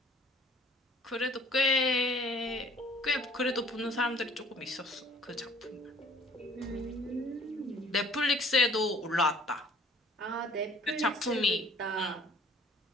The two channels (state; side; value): normal; both; correlation 0.54